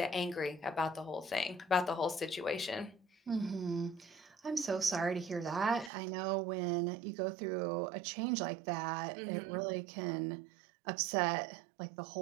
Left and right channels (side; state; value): left; drops out; at 5.9 s